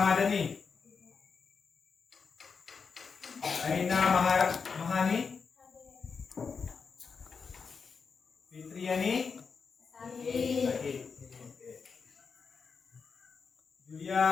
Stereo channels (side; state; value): right; quieter; 5.5 dB